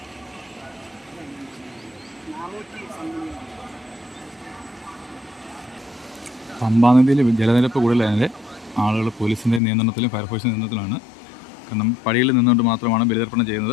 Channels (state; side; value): drops out; right; at 9.6 s